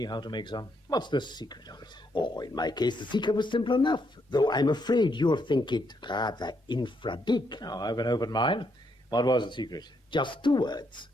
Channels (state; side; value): normal; both; correlation 0.76